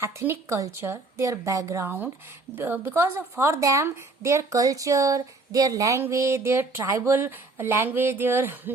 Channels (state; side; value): quieter; left; 3.4 dB